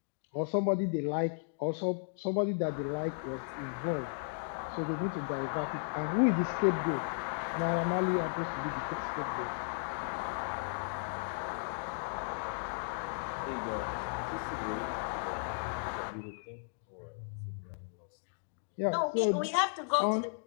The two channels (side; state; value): right; silent; digital silence